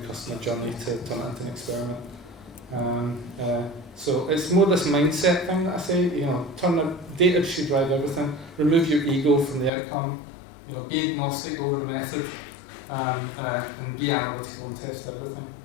journey to turn it into an experiment. So it's more this mindset thing that I say, turn the data should drive everything, remove your ego from the outcome, be agnostic over the method, and be analytical and test everything.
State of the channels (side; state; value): right; drops out; at 9.7 s